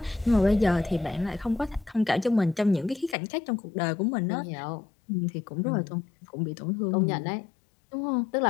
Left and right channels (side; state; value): right; drops out; at 3.2 s